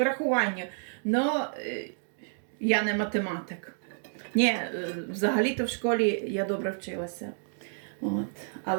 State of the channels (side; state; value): left; silent; digital silence